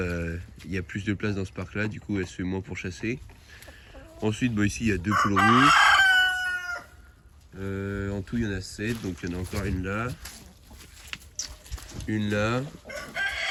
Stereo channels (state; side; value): identical; both; correlation 1.00